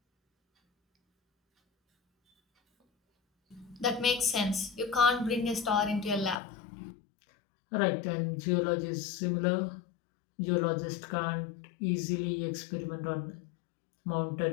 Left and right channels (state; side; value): drops out; right; at 6.4 s